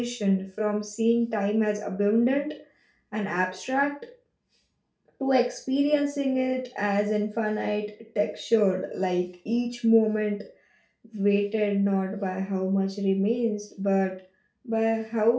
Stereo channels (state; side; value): identical; both; correlation 1.00